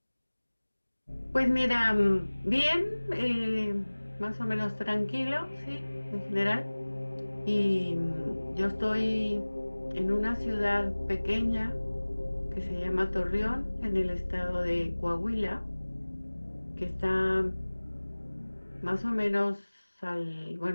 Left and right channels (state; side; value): inverted; both; correlation -1.00